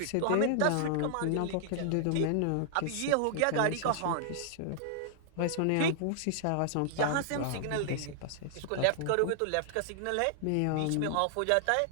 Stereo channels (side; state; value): both; different; correlation -0.01